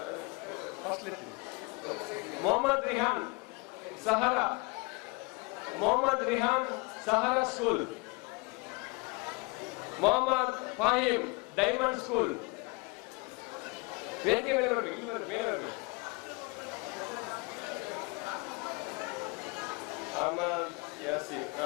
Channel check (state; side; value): quieter; right; 27.9 dB